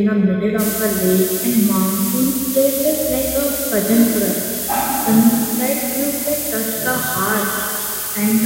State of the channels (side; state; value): both; identical; correlation 1.00